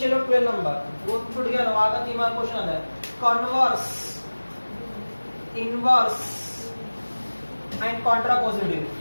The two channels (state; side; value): inverted; both; correlation -1.00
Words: लो 12 नंबर, वो छूट गया ना, वहां का 3 मार्क क्वेश्चन आता है। Converse, inverse and contrapositive,